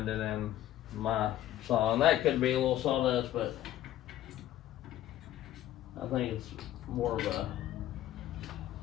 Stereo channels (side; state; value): right; quieter; 13.0 dB